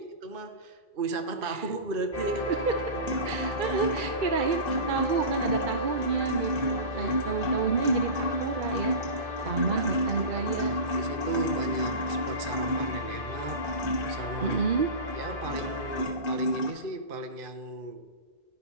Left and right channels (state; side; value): late; left; 2.3 ms